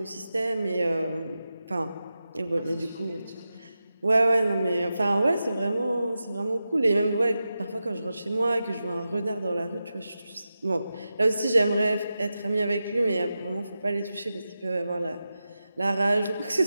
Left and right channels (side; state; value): both; inverted; correlation -0.91